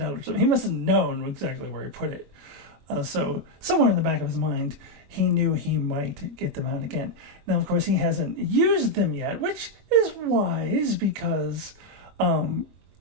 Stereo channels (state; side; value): late; left; 22 ms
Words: out or something. He must have known exactly where he put it. So somewhere in the back of his mind, he knew he might get them out again. Now, of course, he hasn't used them yet, which is wise, because